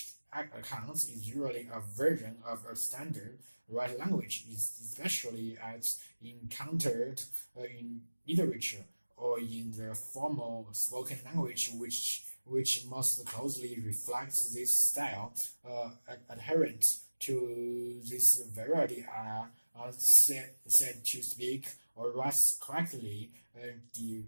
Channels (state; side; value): inverted; both; correlation -1.00